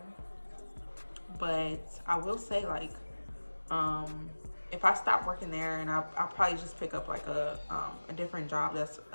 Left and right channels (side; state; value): both; inverted; correlation -1.00